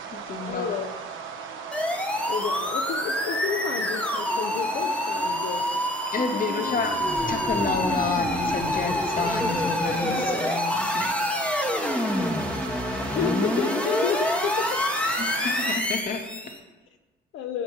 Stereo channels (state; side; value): normal; both; correlation 0.52